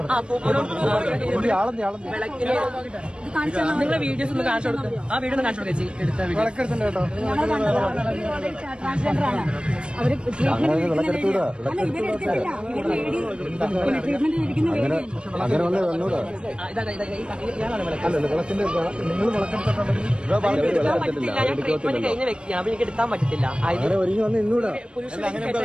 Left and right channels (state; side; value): late; left; 0.055 ms